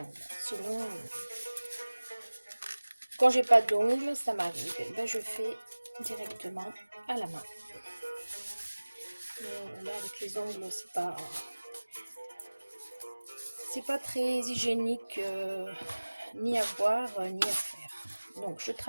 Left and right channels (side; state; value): both; inverted; correlation -1.00